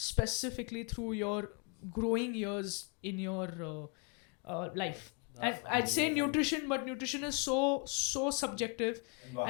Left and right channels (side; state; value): right; quieter; 34.8 dB